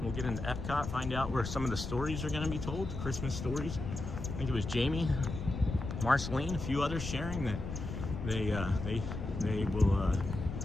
We'll get into Epcot, find out where some of the stories are gonna be told, Christmas stories. I think it was Jamie, Marceline, a few others sharing that they will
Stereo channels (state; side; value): noise; left; rumble, 6 dB below the sound